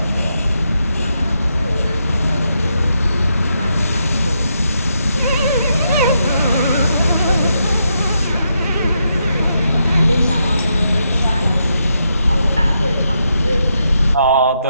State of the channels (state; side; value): inverted; both; correlation -0.81